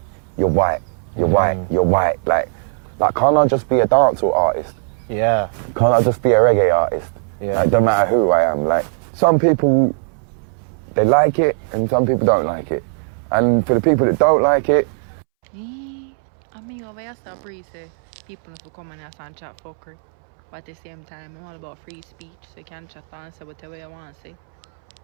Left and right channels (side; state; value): left; silent; 65 dB below the other